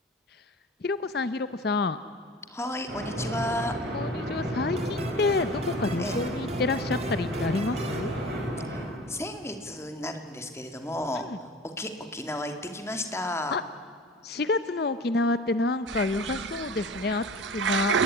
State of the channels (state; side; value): normal; both; correlation 0.39